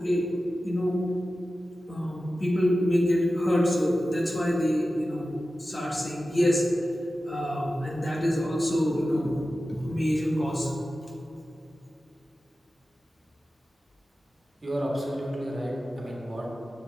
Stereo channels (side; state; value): both; normal; correlation 0.94